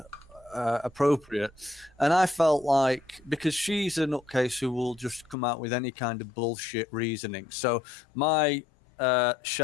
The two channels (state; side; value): drops out; right; at 5.4 s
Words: appropriate? And I felt like, because she's a nutcase who will just come out with any kind of bullshit reasoning. So my